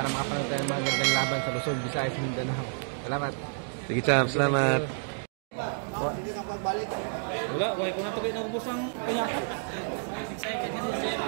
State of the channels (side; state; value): left; silent; digital silence